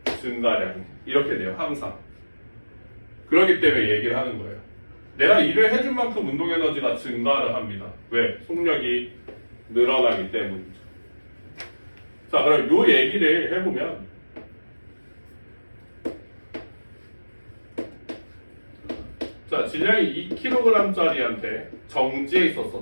증가량 이렇게 돼요. 항상. 그렇기 때문에 얘기를 하는 거예요. 내가 일을 해준 만큼 운동 에너지가 증가를 합니다. 왜? 속력이 늘어나기 때문이죠. 자, 그럼 요 얘기를 해보면 자, 질량이 2kg짜리한테 정지해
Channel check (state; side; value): inverted; both; correlation -1.00